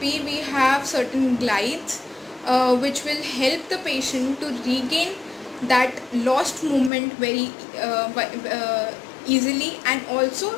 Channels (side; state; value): right; drops out; at 6.9 s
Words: we have certain glides which will help the patient to regain that lost movement very easily, and